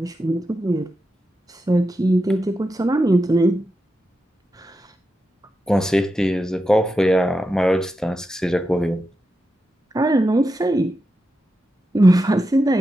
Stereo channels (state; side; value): normal; both; correlation 0.89